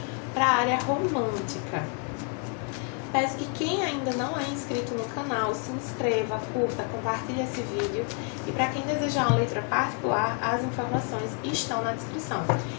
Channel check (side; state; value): right; quieter; 39.5 dB